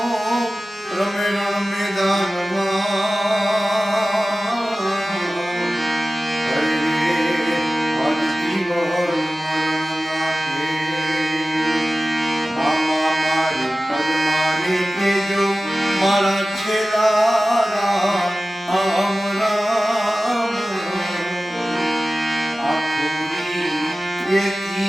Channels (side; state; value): both; normal; correlation 0.96